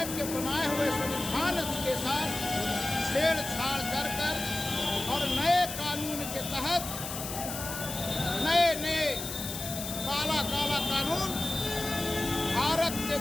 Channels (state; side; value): noise; left; hiss, 7 dB below the sound